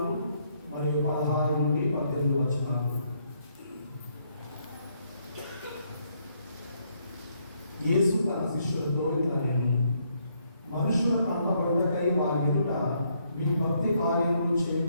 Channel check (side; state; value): both; inverted; correlation -0.73